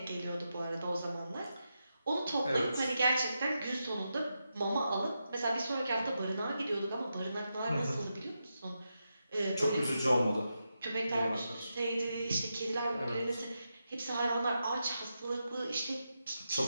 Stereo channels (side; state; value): both; inverted; correlation -0.87